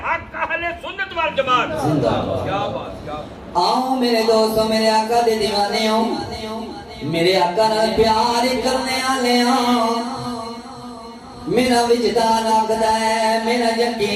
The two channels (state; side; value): identical; both; correlation 1.00